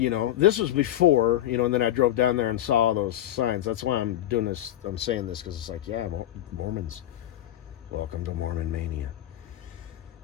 know, this was before, you know, and then I drove down there and saw those signs. That's why I'm doing this. I'm saying this because it's like, yeah, Mormons. Welcome to Mormon Mania.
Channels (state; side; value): quieter; right; 13.0 dB